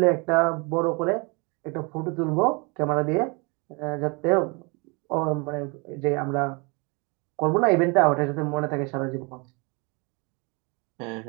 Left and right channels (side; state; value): left; quieter; 30.0 dB